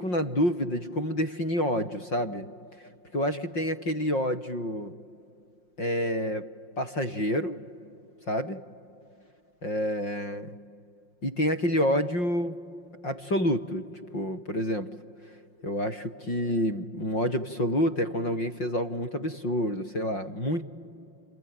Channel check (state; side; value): late; right; 5.6 ms